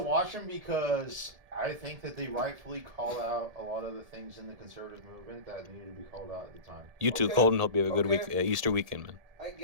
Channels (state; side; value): late; left; 1.7 ms